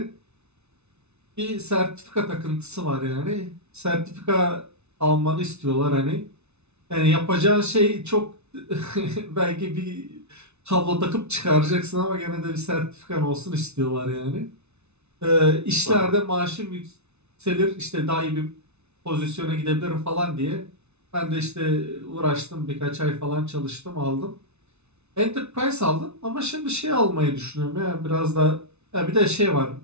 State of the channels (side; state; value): left; late; 0.81 ms